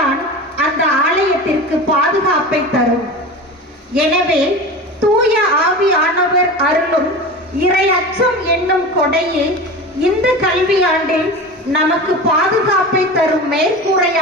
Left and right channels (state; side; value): normal; both; correlation 0.30